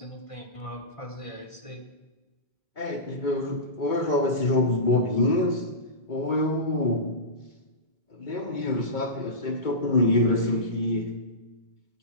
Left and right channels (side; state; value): right; late; 2.2 ms